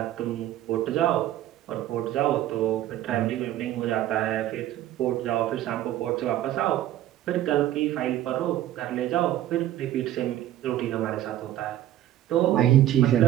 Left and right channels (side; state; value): left; quieter; 13.1 dB